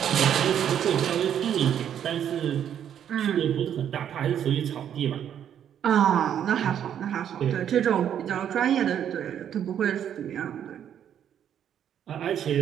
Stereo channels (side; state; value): left; quieter; 9.5 dB